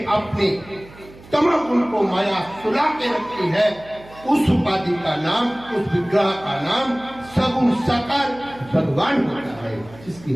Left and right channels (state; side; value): noise; right; hum, 21 dB below the sound